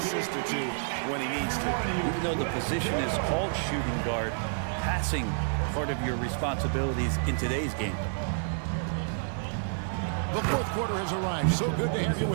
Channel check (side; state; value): left; silent; digital silence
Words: or two when he needs to. Even though the position is called shooting guard, passing part of your responsibilities in today's game. The fourth quarter has arrived. So good to have you